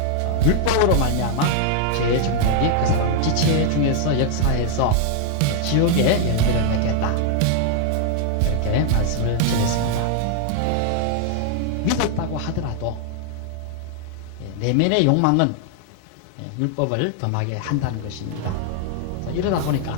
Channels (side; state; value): both; different; correlation 0.00